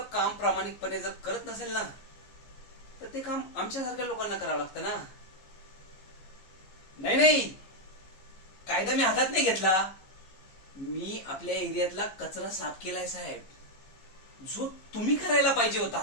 काम प्रामाणिकपणे जर करत नसेल ना, तर ते काम आमच्यासारख्या लोकांना करावं लागतं ना. नाही नाही, कायदा मी हातात नाही घेतला. मी आपल्या एरियातला कचरा साफ केलाय साहेब, जो तुम्ही करायला पाहिजे होता.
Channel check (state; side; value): late; right; 15 ms